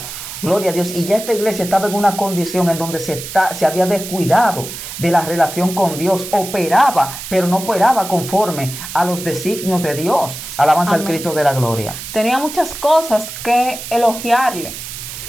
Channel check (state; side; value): noise; right; hiss, 10 dB below the sound